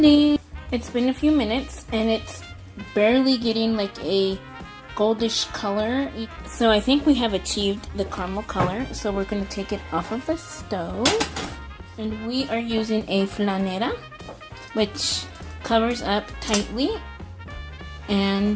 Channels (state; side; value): identical; both; correlation 1.00